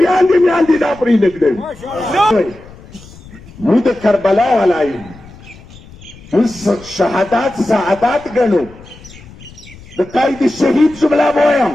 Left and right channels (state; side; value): noise; left; rumble, 21 dB below the sound